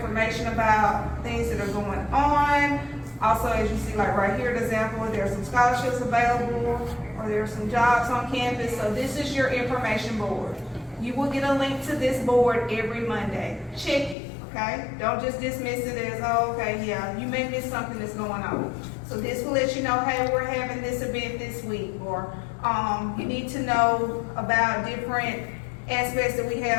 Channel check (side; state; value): right; drops out; at 14.2 s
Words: about things that are going on. Also, as you see, like right here, an example, there are some scholarships available, or there are some jobs on campus. So this is your information board. You will get a link to this board every Monday. Check it, okay? Don't just dismiss it as, oh, okay, yeah, you may miss something that's going on. So this will let you know, hey, we're having this event this week, or you need to know about different aspects that we